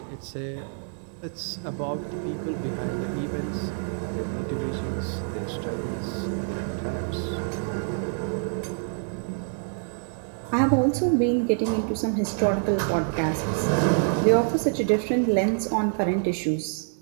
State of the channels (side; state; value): left; silent; digital silence